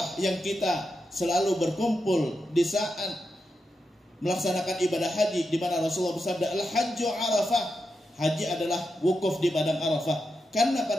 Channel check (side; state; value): both; normal; correlation 0.87